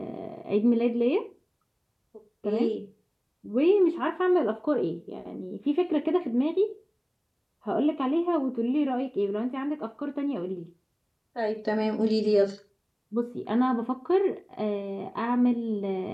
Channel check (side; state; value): both; identical; correlation 1.00